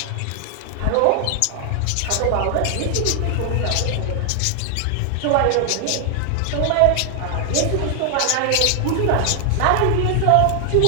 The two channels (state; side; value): different; both; correlation 0.00